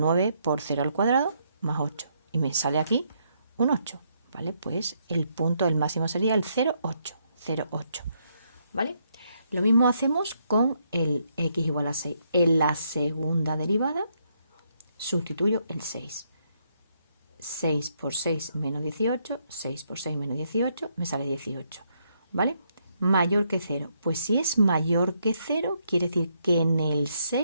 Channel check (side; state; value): both; inverted; correlation -0.75